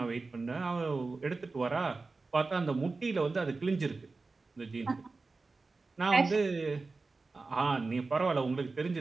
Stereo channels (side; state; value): left; quieter; 3.8 dB